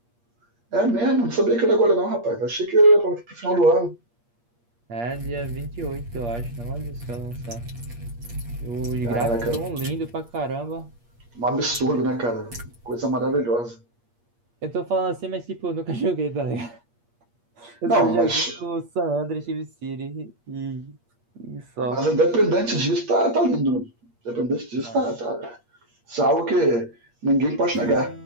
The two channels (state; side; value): late; left; 8.5 ms